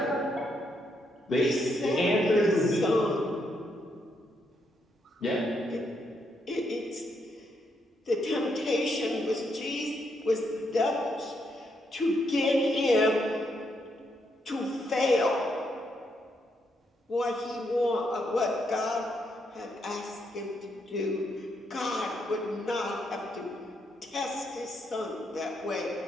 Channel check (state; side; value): normal; both; correlation 0.78